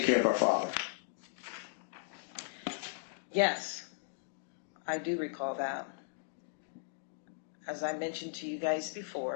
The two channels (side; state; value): right; silent; digital silence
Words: care of our father? Yes, I do recall that. As I mentioned to you guys